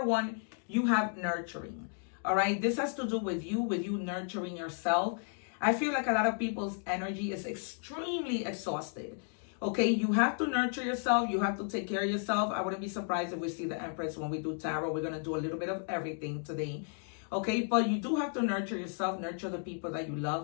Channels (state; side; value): silent; right; 55 dB below the other